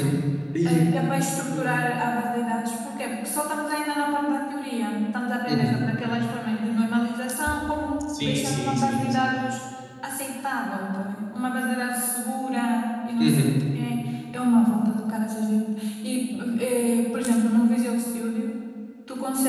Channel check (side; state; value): both; identical; correlation 1.00